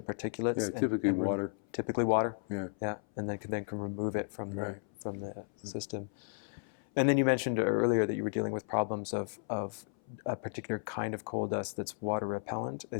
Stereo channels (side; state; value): right; silent; 55 dB below the other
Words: particulates. Yeah, typically water. Typically water. Yeah. Yeah, and then can remove it from right. from the system. And then you mentioned earlier that you were dealing with problems of a particular kind of coal dust that's water repellent.